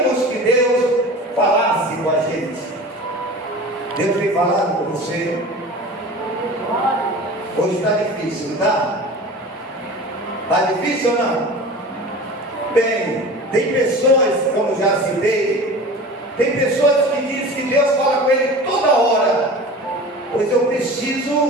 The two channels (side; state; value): both; normal; correlation 0.36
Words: que Deus falasse com a gente? Deus tem falado com você? Hoje está difícil, não está? Está difícil ou não? Bem, tem pessoas, como já citei, tem pessoas que dizem que Deus fala com ele toda hora. Pois eu